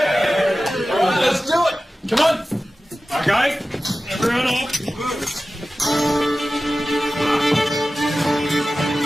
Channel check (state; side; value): normal; both; correlation 0.95